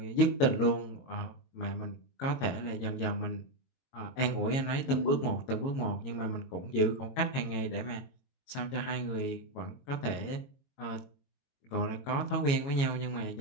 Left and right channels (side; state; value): right; late; 22 ms